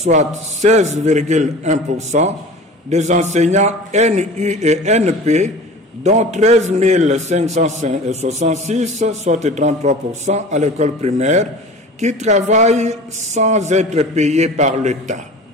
16,1% des enseignants NU et NP, dont 13 566, soit 33% à l'école primaire, qui travaillent sans être payés par l'État.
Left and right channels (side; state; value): both; normal; correlation 0.39